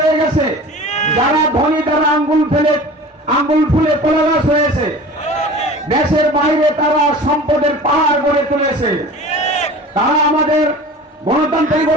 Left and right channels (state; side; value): normal; both; correlation 0.39